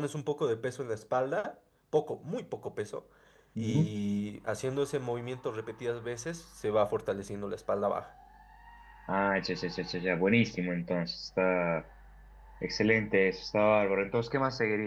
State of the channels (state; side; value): identical; both; correlation 1.00